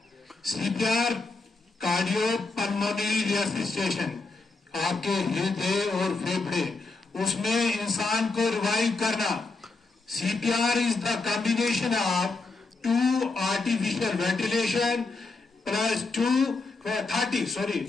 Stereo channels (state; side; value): quieter; right; 3.7 dB